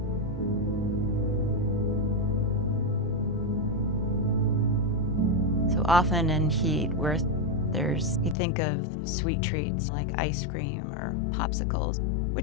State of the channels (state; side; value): drops out; right; at 8.3 s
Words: So often in heat, where you think of sweet treats like ice cream or popsicles,